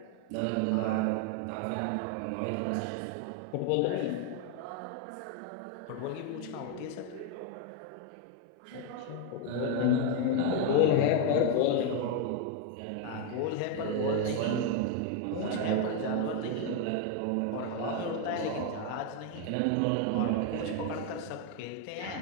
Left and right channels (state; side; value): different; both; correlation 0.01